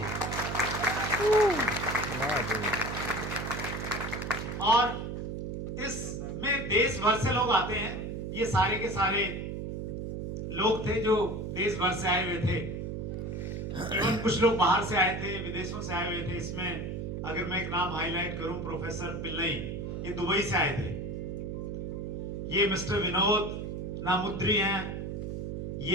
और इसमें देश भर से लोग आते हैं। ये सारे के सारे लोग थे जो देश भर से आए हुए थे, इवन कुछ लोग बाहर से आए थे, विदेशों से आए हुए थे। इसमें अगर मैं एक नाम हाईलाइट करूं, प्रोफेसर पिल्लई, ये दुबई से आए थे। ये मिस्टर विनोद नामुद्री हैं,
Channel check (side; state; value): right; noise; hum, 5 dB below the sound